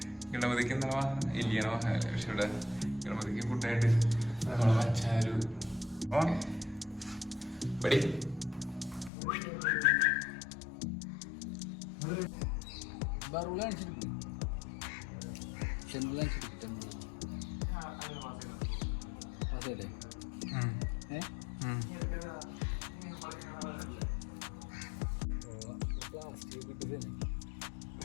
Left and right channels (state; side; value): drops out; right; at 9.1 s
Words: ഗണപതിക്ക് എന്താ ഇല്ലയാണോ? പക്ഷെ ഇവിടെ ഗണപതിക്ക് ഫുഡായിട്ട് വച്ചാരു പടി അതെ